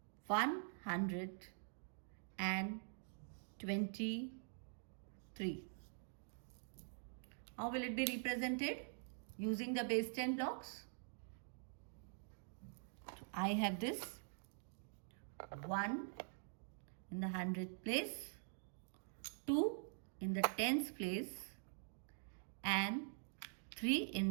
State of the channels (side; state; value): left; silent; digital silence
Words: 123. How will it be represented? using the base 10 blocks. So I have this 1 in the 100th place, 2 in the 10th place, and 3 in